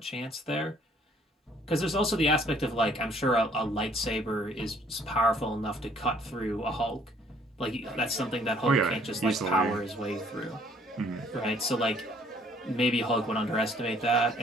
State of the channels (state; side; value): normal; both; correlation 0.61